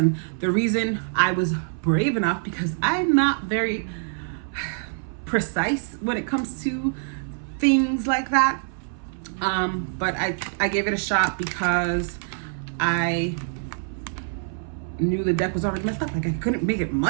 the reason I was brave enough, because I'm not very precise when it comes to things like that, but I gave it a shot because I knew the deck was already messed up. Like, I couldn't make it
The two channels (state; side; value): silent; left; 60 dB below the other